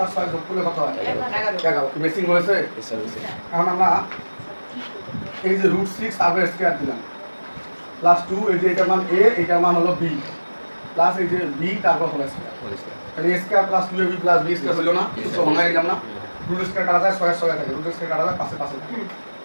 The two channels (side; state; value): both; inverted; correlation -1.00